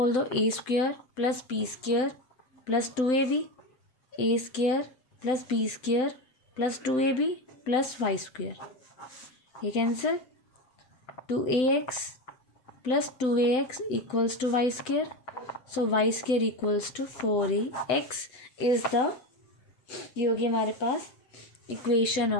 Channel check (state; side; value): late; right; 7.8 ms